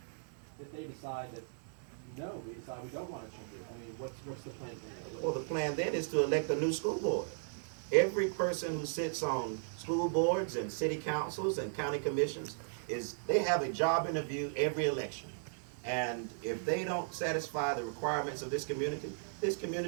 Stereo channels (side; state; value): left; silent; digital silence